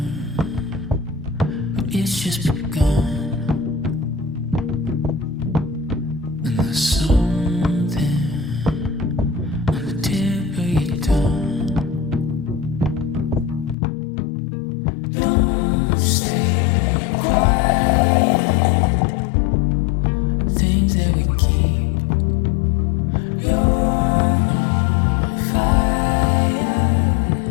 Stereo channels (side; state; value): right; drops out; at 13.8 s